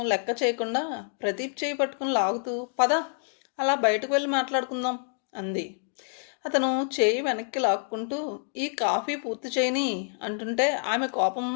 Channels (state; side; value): silent; right; 56 dB below the other